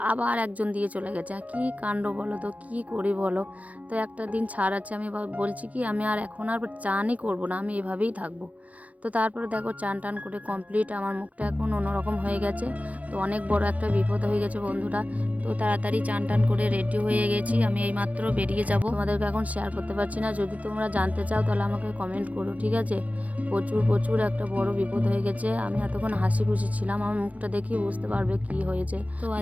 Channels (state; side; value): late; left; 0.070 ms